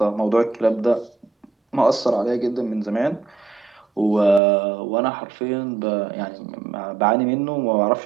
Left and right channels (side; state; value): left; drops out; at 4.4 s